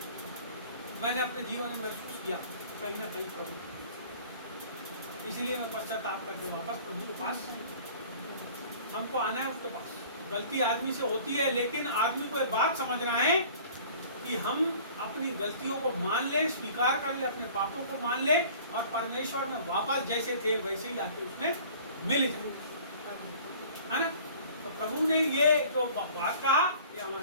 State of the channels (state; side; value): inverted; both; correlation -0.48